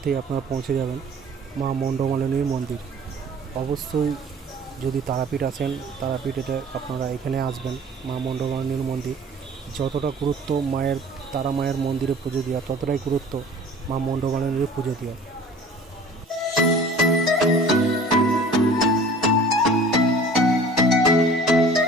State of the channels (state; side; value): normal; both; correlation 0.46